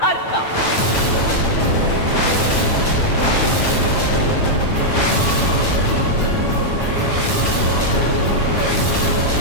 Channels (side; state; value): right; late; 8.9 ms